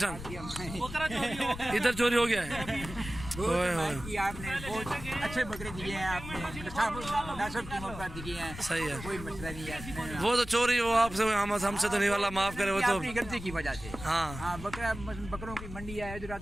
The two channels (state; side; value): noise; left; rumble, 11 dB below the sound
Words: इधर चोरी हो गया है? आपने बहुत अच्छे बकरे दिए हैं, आपने मुनासिब कीमत पर दिए हैं। सही है, कोई मसला नहीं है। वो तो चोरी हो आपसे, हमसे तो नहीं, वाला माफ करे। वो तो अपनी गलती की वजह से। हाँ, बकरों की मंडी है, इधर